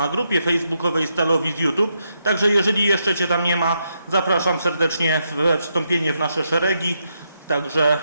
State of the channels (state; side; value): inverted; both; correlation -0.81